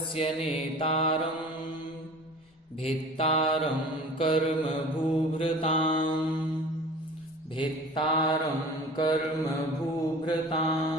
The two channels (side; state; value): both; normal; correlation 0.42